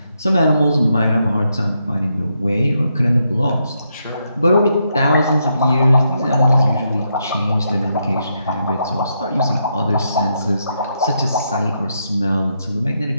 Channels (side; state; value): both; inverted; correlation -0.80